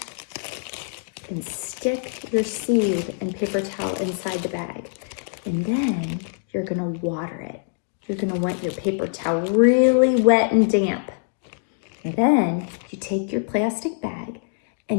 and stick your seed and paper towel inside the bag. And then you're gonna water it. You're gonna want your paper towel really wet and damp. And then you take your plastic bag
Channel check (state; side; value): silent; right; 63 dB below the other